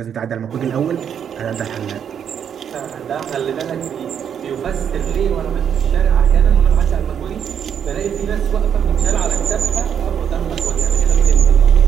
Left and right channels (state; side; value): quieter; left; 8.3 dB